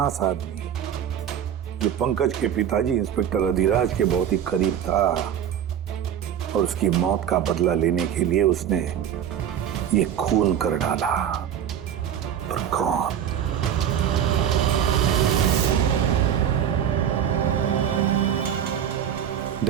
आदमी जो पंकज के पिताजी इंस्पेक्टर अधिराज के बहुत ही करीब था और उसकी मौत का बदला लेने के लिए उसने ये खून कर डाला। पर कौन?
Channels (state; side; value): quieter; left; 9.4 dB